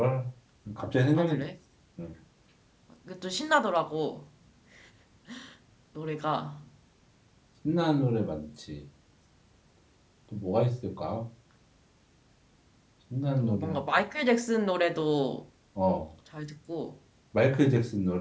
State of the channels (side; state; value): both; identical; correlation 1.00